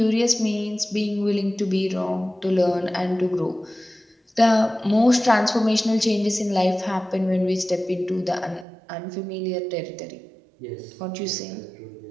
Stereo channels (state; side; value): drops out; left; at 8.7 s